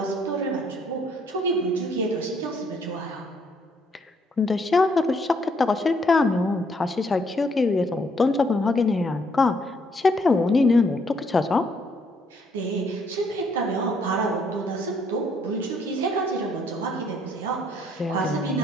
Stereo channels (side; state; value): both; normal; correlation 0.68